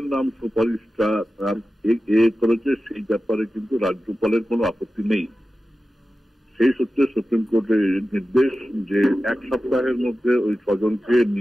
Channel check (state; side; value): normal; both; correlation 0.94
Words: নাম সুপারিশটা করেছে সেই ব্যাপারে কিন্তু রাজ্যপালের কোনো আপত্তি নেই। সেই সূত্রে সুপ্রিম কোর্টের নির্দেশ যে 1 সপ্তাহের মধ্যে ওই 6 জনকে